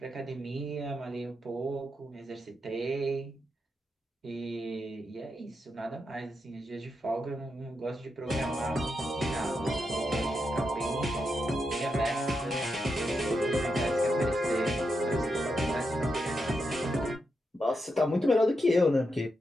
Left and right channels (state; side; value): normal; both; correlation 0.85